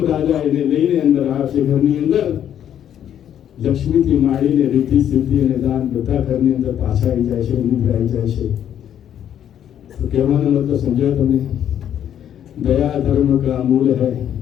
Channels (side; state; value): right; quieter; 10.0 dB